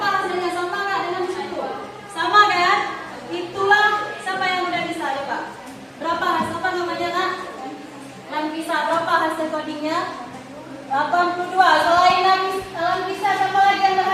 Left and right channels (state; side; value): identical; both; correlation 1.00